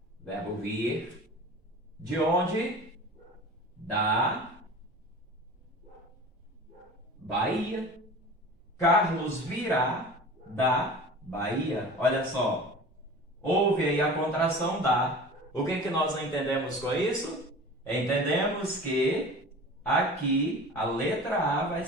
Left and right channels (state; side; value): normal; both; correlation 0.38